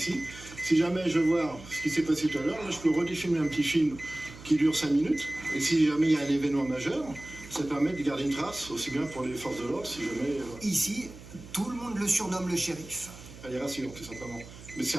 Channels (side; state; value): right; noise; hum, 17 dB below the sound